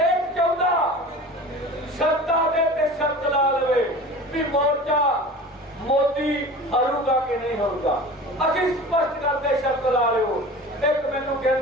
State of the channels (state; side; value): normal; both; correlation 0.37